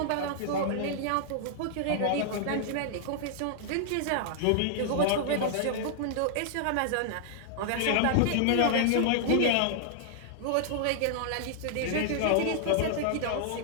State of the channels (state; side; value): different; both; correlation -0.01